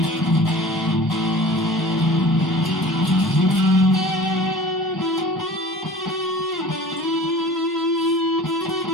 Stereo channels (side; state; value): both; normal; correlation 0.42